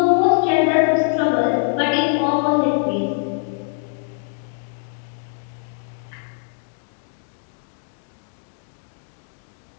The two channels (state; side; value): silent; right; digital silence